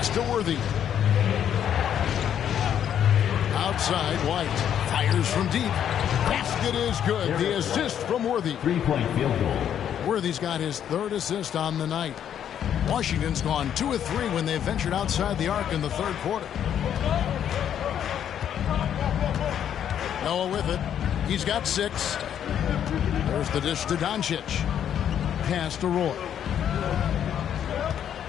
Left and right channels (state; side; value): quieter; right; 9.5 dB